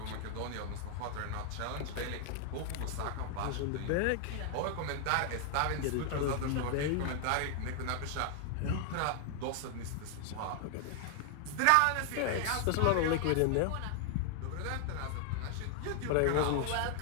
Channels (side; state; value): both; different; correlation 0.00